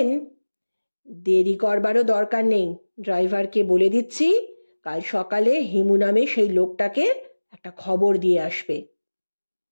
দেরি করবারও দরকার নেই, ড্রাইভারকে বলে দিচ্ছি কাল সকালে হিমু নামে সেই লোকটাকে একটা খবর দিয়ে আসবে।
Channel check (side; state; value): both; inverted; correlation -1.00